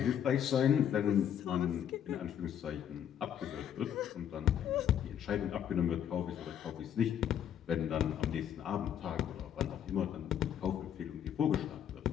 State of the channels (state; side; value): quieter; right; 9.5 dB